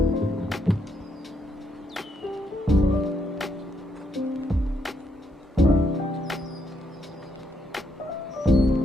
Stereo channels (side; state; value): both; normal; correlation 0.76